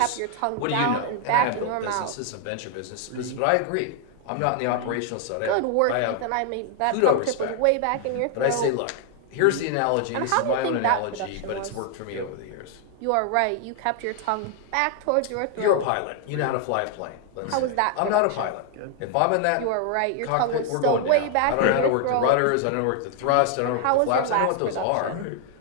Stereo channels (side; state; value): both; different; correlation 0.00